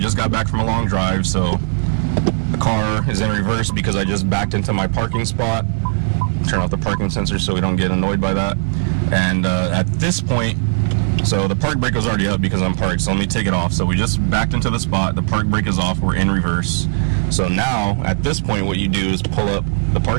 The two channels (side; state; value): left; silent; 67 dB below the other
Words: got back from a long drive. So the car is in reverse because I just backed into my parking spot. Turn off the parking sensor so we don't get annoyed by that. And at this point, so the park brake was already up because I'm parked, so let me take it off. So we just backed into the spot, the park brake is off, we're in reverse. So now, at this point, what you do is pull up the